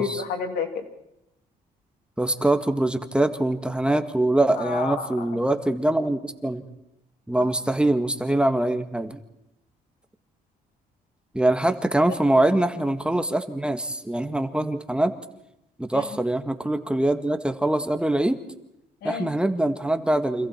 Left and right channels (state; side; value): normal; both; correlation 0.89